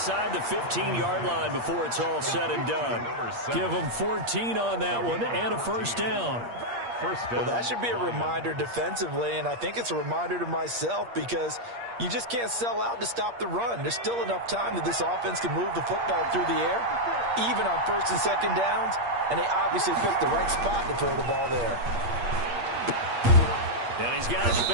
the 15-yard line before it's all said and done. Give them 14 on that one and a 1st down. Well, that should be a reminder defensively, and I think it's a reminder to myself because you just can't sell out to stop the run. There's still enough time that this offense can move the football through the air, even on 1st and 2nd downs, and they obviously picked the right spot to throw the ball there. And he's got his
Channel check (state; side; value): late; left; 8.5 ms